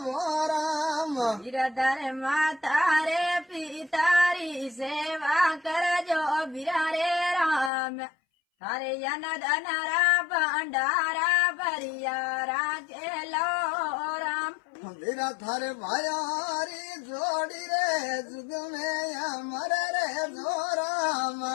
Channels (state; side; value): drops out; right; at 7.7 s